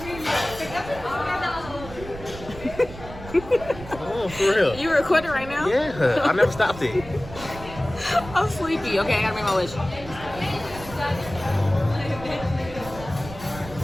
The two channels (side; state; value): right; noise; rumble, 14 dB below the sound